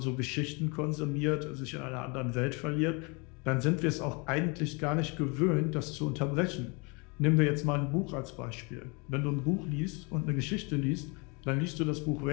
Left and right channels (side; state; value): right; quieter; 30.8 dB